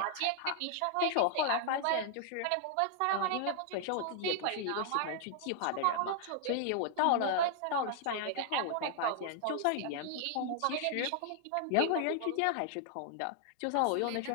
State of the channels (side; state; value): both; different; correlation 0.00